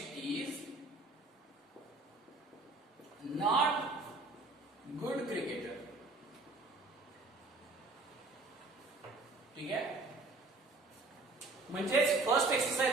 is not good cricketer. ठीक आहे. म्हणजेच फर्स्ट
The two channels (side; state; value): left; quieter; 3.3 dB